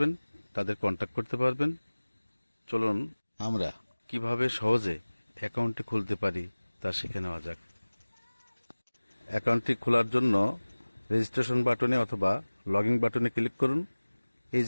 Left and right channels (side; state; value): both; inverted; correlation -1.00